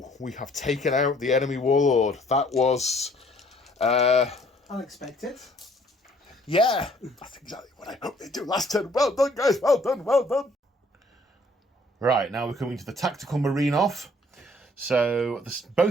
we have taken out the enemy Warlord. That was... Unexpected. Yeah, that's exactly what I hoped they'd do last turn. Well done, guys, well done, well done. Right, now we're coming to the Tactical Marine off. So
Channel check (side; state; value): both; normal; correlation 0.60